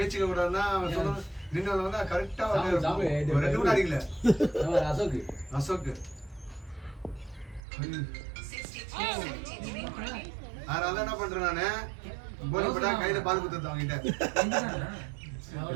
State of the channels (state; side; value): drops out; left; at 7.6 s